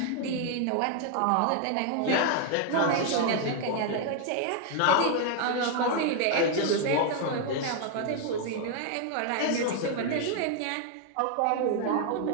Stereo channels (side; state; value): both; different; correlation 0.00